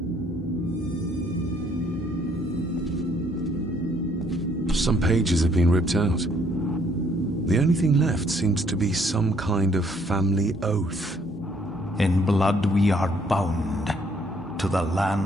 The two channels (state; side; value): normal; both; correlation 0.65